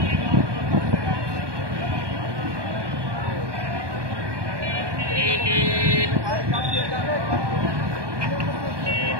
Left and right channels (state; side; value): late; left; 1.2 ms